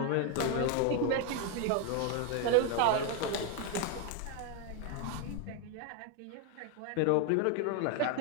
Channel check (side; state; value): both; different; correlation 0.01